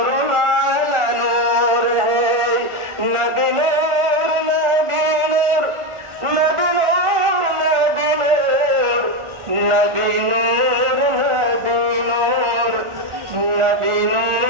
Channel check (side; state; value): left; late; 1.4 ms